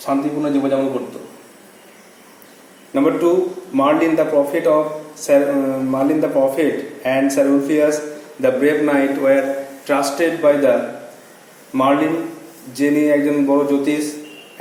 শান্তিপূর্ণ জীবনযাপন করত. Number 2, Merlin the prophet and Sir Ulfius the brave knight were trusted by the Merlin, যিনি একজন বড় জ্যোতিষ,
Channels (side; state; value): both; identical; correlation 1.00